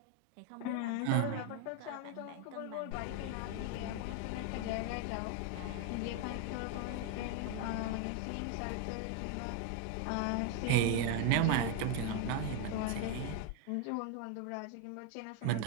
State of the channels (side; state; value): both; different; correlation 0.01